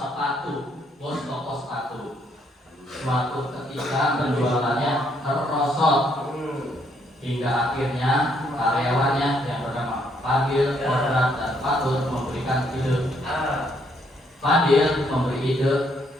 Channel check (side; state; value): both; normal; correlation 0.71